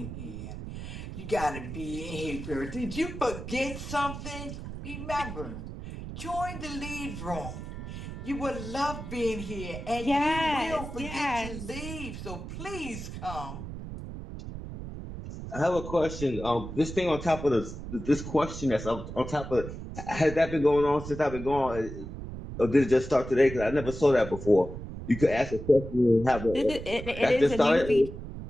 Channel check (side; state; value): right; noise; rumble, 9 dB below the sound